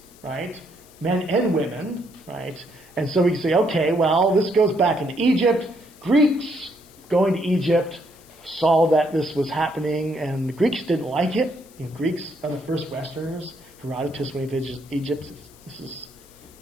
right? Men and women, right? And so we can say, okay, well, this goes back into Egypt. Greeks going to Egypt saw that this was happening, and the Greeks didn't like it. Greeks are the first Westerners. Herodotus, when he visits Egypt,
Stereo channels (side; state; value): left; noise; hiss, 25 dB below the sound